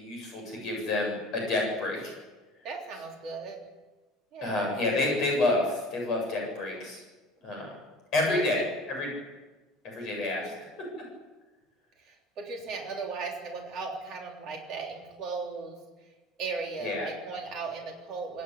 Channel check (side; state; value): both; normal; correlation 0.42